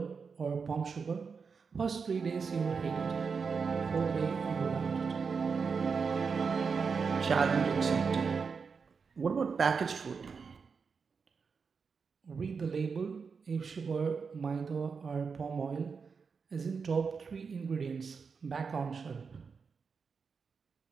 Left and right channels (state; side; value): quieter; left; 5.5 dB